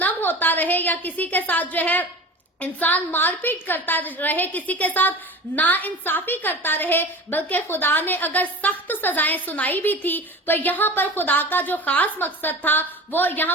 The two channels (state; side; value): normal; both; correlation 0.34